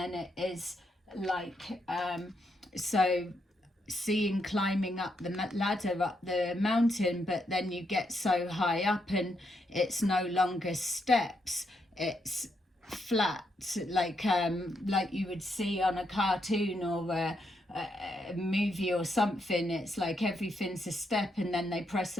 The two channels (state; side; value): normal; both; correlation 0.79